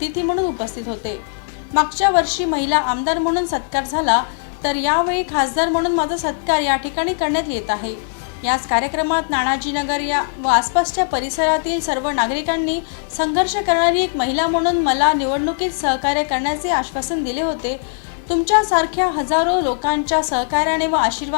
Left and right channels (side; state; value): right; silent; 62 dB below the other